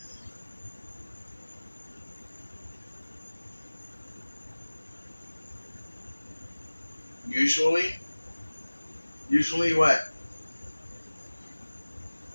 Usually? Usually what?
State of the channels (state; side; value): inverted; both; correlation -1.00